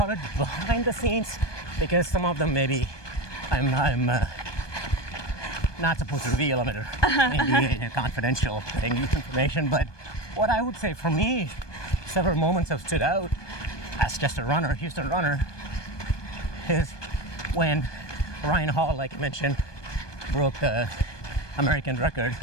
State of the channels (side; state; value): right; late; 1.2 ms